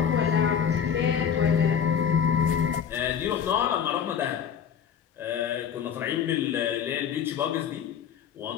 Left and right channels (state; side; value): quieter; right; 7.9 dB